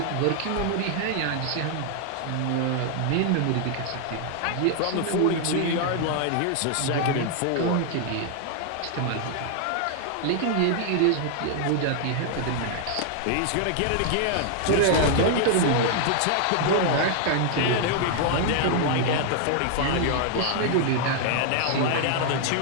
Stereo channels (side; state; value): both; different; correlation 0.00